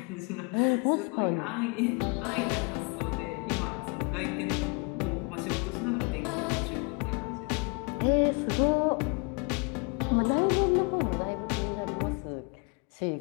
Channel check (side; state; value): right; quieter; 32.8 dB